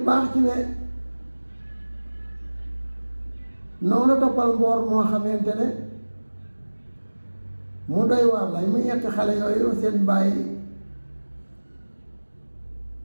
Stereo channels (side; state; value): both; inverted; correlation -1.00